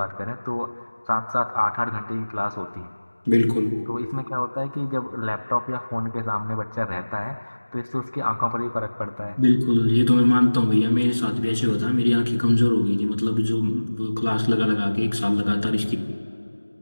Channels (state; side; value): inverted; both; correlation -1.00